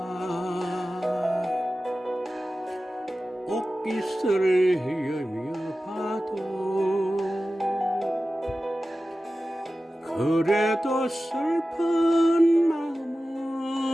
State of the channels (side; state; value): both; normal; correlation 0.95